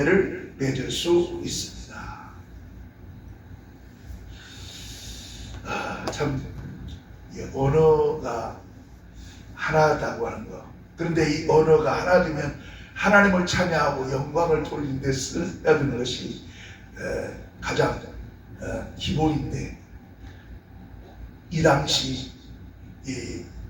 맺을 수 있습니다. 참 언어가 하나다고 하는 거. 그런데 이 언어가 하나 되면 하나님을 찬양하고 영광을 돌리는 데 써야 되는 것이 가장 기본인데, 이 당시 이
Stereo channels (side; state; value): both; identical; correlation 1.00